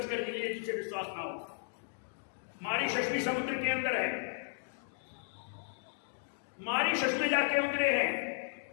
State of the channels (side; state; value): right; silent; digital silence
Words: कर लीजिए जिसे विश्वास ना हो। मारीशस भी समुद्र के अंदर है। मारीशस में जाके उतरे हैं